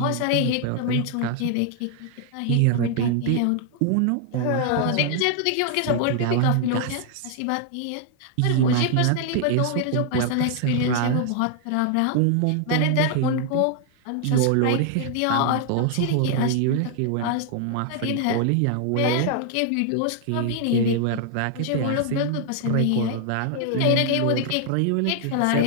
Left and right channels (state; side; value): different; both; correlation 0.00